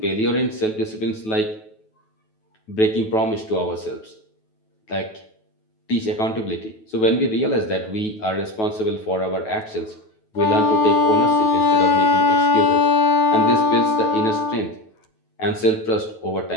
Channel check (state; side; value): late; right; 9.2 ms